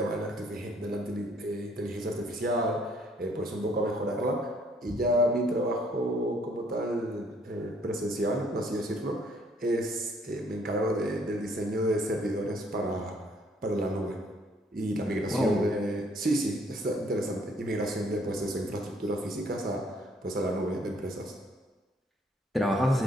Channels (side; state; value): both; normal; correlation 0.64